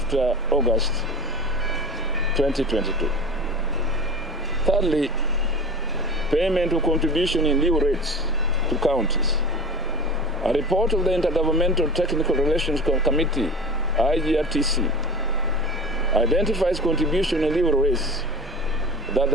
August 2022. Thirdly, payment of contribution in lieu rates to counties. A report of the Intergovernmental Technical Relations Committee, IGRTC, identifies contribution in lieu rates that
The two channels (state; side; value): normal; both; correlation 0.32